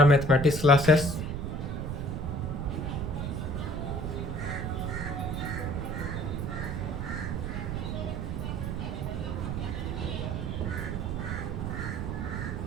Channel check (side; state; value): right; noise; rumble, 3 dB below the sound